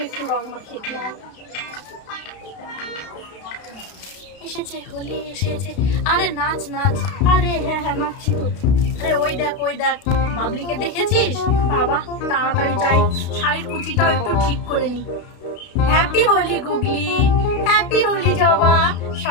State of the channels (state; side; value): late; right; 32 ms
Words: একটু রং মাখিয়ে দিই। এসেছে হোলি এসেছে। আরে নাচ নাচ। আরে হ্যাঁ নাচছি তো। আরে ওই দেখ বাবলিকে দেখেছিস? বাবা তাড়াতাড়ি যাই, শাড়ির কুচিটাও একটু ঠিক করে নি। হ্যাপি হোলি গুগলি, হ্যাপি হোলি জবা,